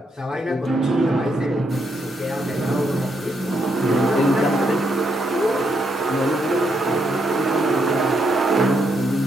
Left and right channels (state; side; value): normal; both; correlation 0.78